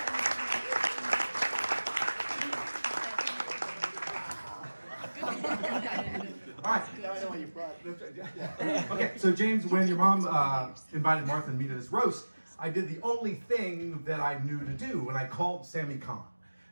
All right. Now I know why you brought it. Okay, so James, when your mom invited Martha and me to this roast, I did the only thing that I knew to do, and I called Sammy Kahn.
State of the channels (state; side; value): inverted; both; correlation -1.00